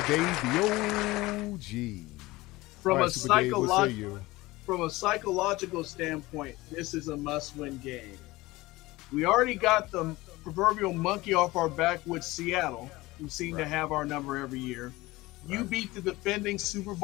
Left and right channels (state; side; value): quieter; right; 19.9 dB